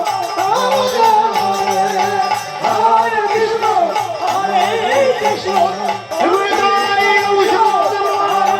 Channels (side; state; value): both; identical; correlation 1.00